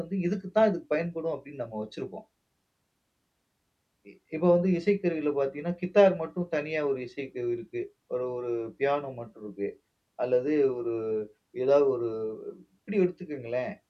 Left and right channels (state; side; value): identical; both; correlation 1.00